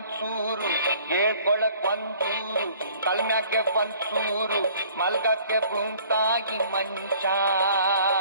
ಹೇಳ್ಕೊಳಕ್ ಒಂದೂರು ಕಲ್ಮ್ಯಾಗೆ ಒಂದ್ಸೂರು, ಮಲ್ಗಕ್ಕೆ ಭೂಮ್ತಾಗಿ ಮಂಚ.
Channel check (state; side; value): inverted; both; correlation -0.55